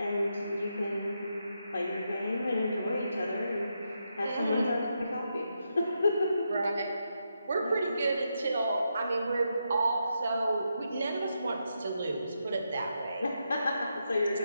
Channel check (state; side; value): inverted; both; correlation -0.83